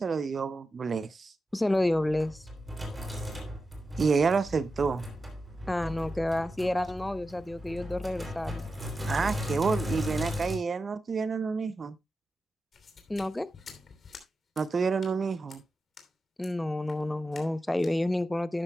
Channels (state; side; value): normal; both; correlation 0.91